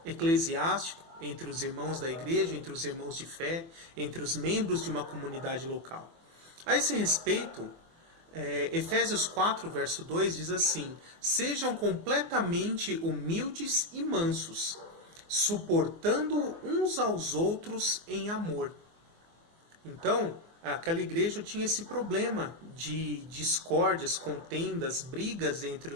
eclesiástico, entre os irmãos da igreja, entre os irmãos de fé, entre os membros de uma comunidade local. A esse respeito, Efésios 4, verso 2 diz assim: sejam completamente humildes e mansos, suportando uns aos outros em amor. Então, aquela igreja tinha esse problema de discórdias, contendas, brigas entre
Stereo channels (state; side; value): late; left; 24 ms